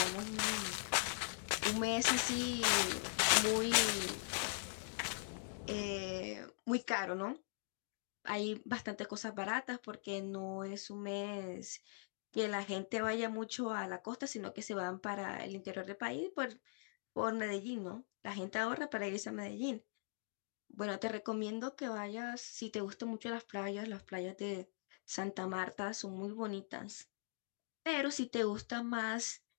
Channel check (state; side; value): silent; right; digital silence